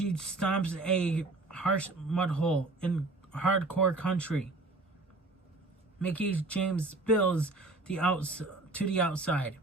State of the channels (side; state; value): left; quieter; 3.1 dB